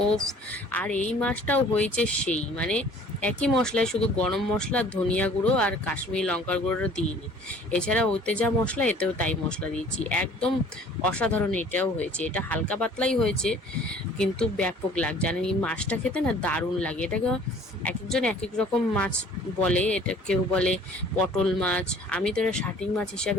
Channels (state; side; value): normal; both; correlation 0.52